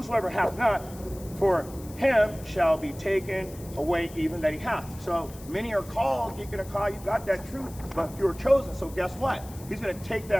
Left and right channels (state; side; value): noise; left; hiss, 19 dB below the sound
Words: hath not, for him shall be taken away even that he hath. So many are called, Deacon Hakah, you got that truth, but few are chosen. So guess what? He's going to take